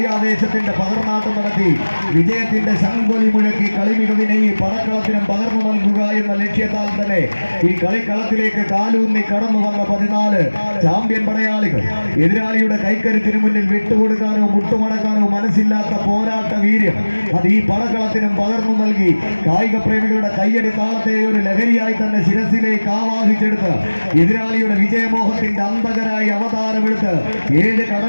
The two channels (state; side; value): inverted; both; correlation -1.00